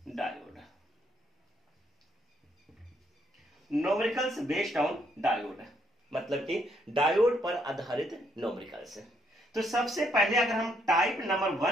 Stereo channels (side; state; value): both; normal; correlation 0.73